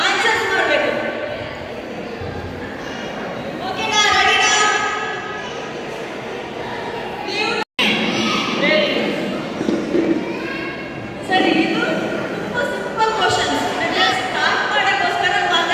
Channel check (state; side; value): identical; both; correlation 1.00